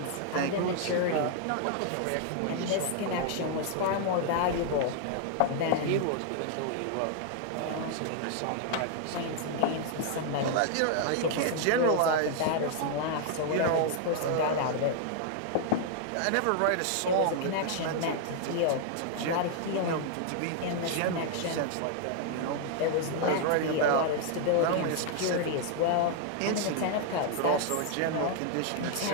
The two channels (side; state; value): both; different; correlation 0.00